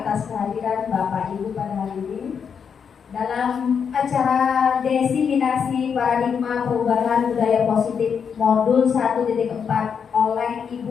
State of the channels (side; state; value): right; quieter; 6.8 dB